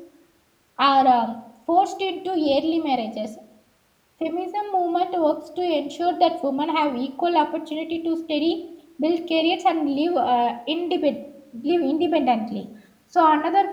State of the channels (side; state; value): both; identical; correlation 1.00